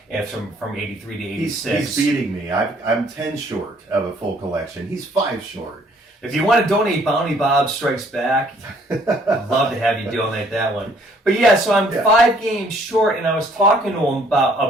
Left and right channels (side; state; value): both; normal; correlation 0.62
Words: and from 83 to 86. He's beating me. I'm 10 short of a full collection. He's 5 short. If you want to donate Bounty Bob Strikes Back, I'd love to have you donate that one. But yeah, so I'm 5 games short, and I was talking to him